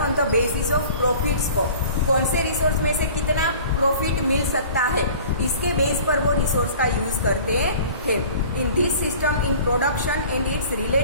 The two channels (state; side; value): inverted; both; correlation -0.45